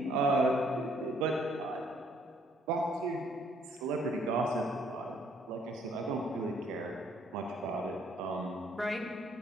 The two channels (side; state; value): both; normal; correlation 0.65